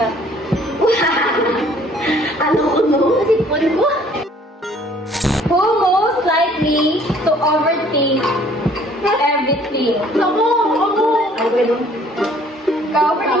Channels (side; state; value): both; normal; correlation 0.57